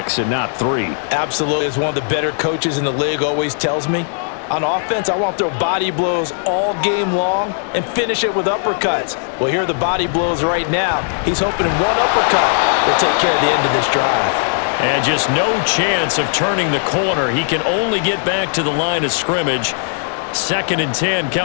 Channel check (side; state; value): right; silent; digital silence